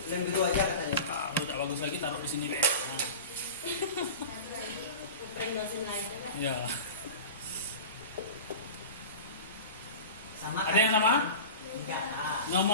lem biru aja katanya. Ah, kalau tidak bagus lagi taruh di sini deh. Nah, Prank dosen lain kan? ya. Sama. Ada yang sama? Enggak, Pak.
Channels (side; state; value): both; inverted; correlation -0.32